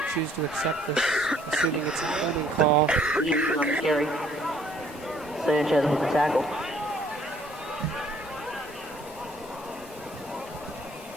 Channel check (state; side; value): normal; both; correlation 0.61